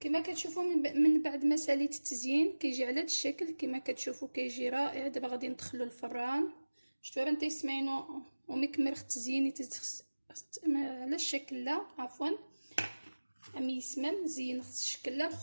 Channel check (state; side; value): inverted; both; correlation -1.00